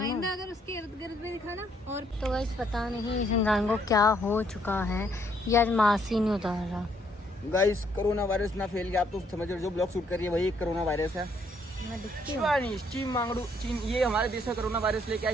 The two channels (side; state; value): both; normal; correlation 0.69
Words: अगर उसके इर्द गिर्द में दिखाना। और तो गाइस पता नहीं इस इंसान को क्या हो चुका है, या मास्क ही नहीं उतार रहा। गाइस कोरोना वायरस ना फैल गया, आप तो समझ रहे हो, जो ब्लॉग शूट कर रही है वही एक कोरोना वायरस है। मैं दिखती हूँ। चीन मांगड़ू चीन, ये हमारे देश में कोरोना वायरस लेके आया,